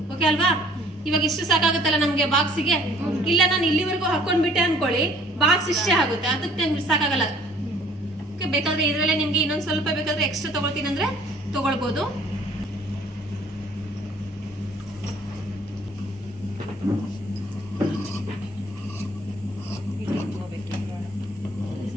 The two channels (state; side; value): normal; both; correlation 0.56